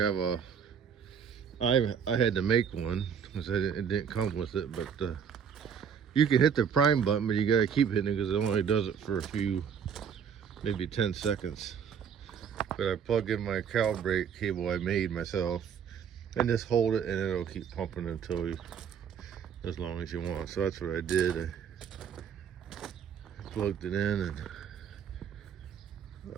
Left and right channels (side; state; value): left; quieter; 7.5 dB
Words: had to make one because it didn't come with it. But you can hit the prime button, but you gotta keep hitting it because it only does it for a few, maybe 10 seconds. But I plug in my calibrate cable I made myself, and just hold it, and it'll keep pumping until as long as you want. So that's what I did. I plugged it in and